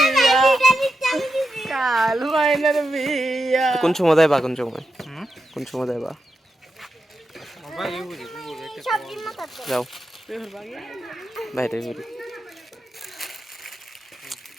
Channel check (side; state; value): both; normal; correlation 0.87